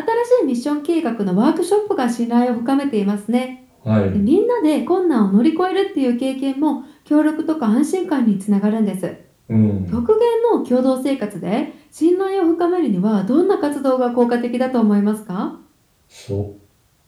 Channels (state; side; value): identical; both; correlation 1.00